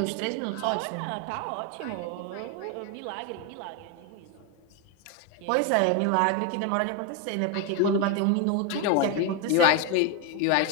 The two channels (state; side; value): different; both; correlation 0.02